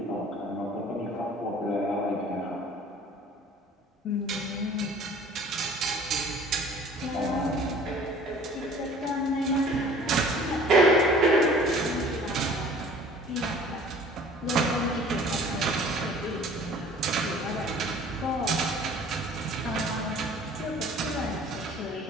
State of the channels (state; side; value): normal; both; correlation 0.49